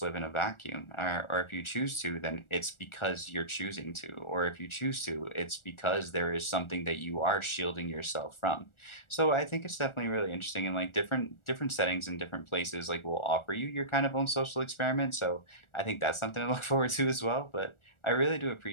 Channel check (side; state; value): right; late; 1.4 ms